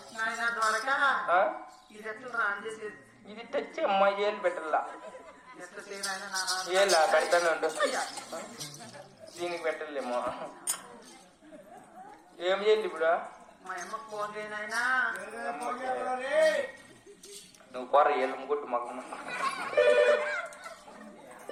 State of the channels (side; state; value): both; identical; correlation 1.00